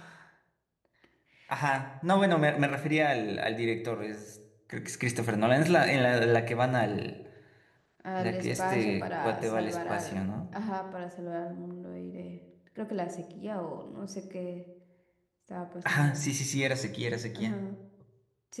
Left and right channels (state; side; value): identical; both; correlation 1.00